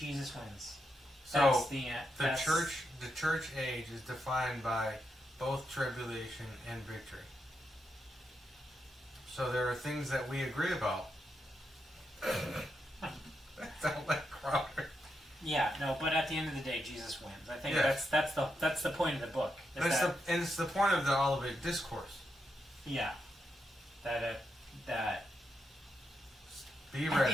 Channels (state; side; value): normal; both; correlation 0.84